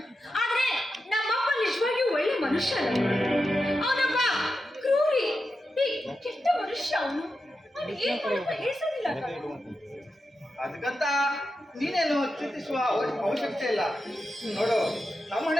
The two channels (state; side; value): normal; both; correlation 0.89